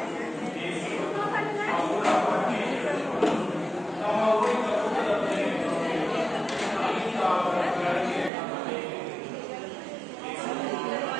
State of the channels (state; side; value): drops out; left; at 8.3 s